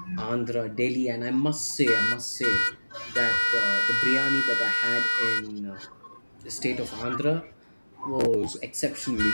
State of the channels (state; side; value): inverted; both; correlation -1.00